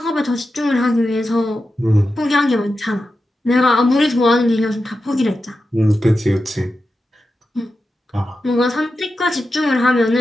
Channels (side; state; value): both; normal; correlation 0.91